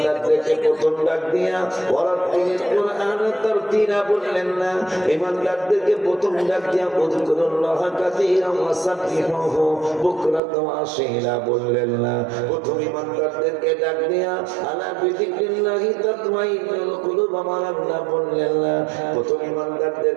প্রথম ডাক দিয়া ওয়ারাতিল কুরআন তারতিলা বললেন না। ঈমানদারদেরকে প্রথম ডাক দিয়া উযকুরুল্লাহ কাসীরান ওয়া সাব্বিহুহু বুকরাতান ওয়া আসীলা বললেন না। প্রথম ঈমানদারদেরকে ডাক দিয়া আলা বিযিকরিল্লাহি তাতমাইন্নুল কুলুব আমার আল্লাহ বললেন না। প্রথম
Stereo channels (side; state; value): left; drops out; at 10.4 s